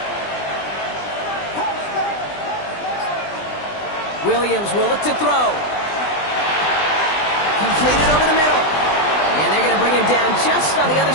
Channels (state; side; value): late; right; 20 ms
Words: Williams will look to throw. Completed over the middle. And they're going to bring him down just on the other